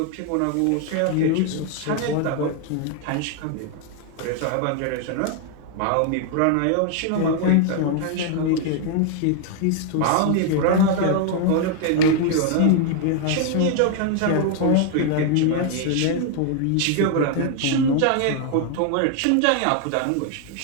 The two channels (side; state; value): both; different; correlation 0.00